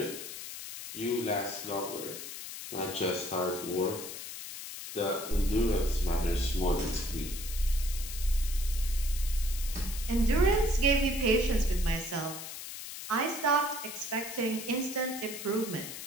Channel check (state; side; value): noise; left; hiss, 9 dB below the sound